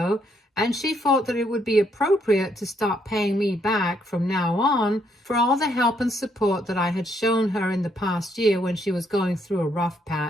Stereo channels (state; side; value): normal; both; correlation 0.72